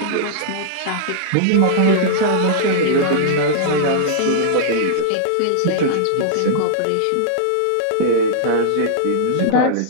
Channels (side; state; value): both; different; correlation -0.02